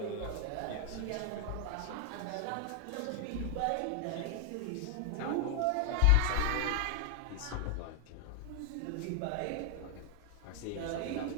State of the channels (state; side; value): different; both; correlation 0.00